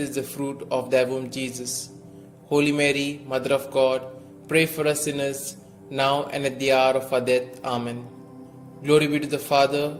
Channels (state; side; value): identical; both; correlation 1.00